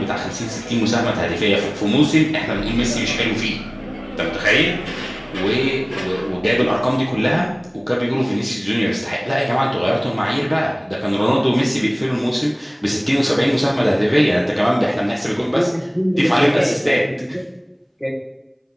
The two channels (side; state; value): both; identical; correlation 1.00